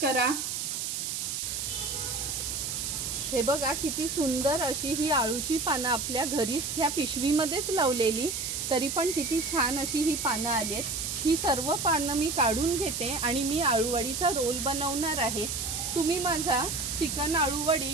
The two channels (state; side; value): noise; right; hiss, 3 dB below the sound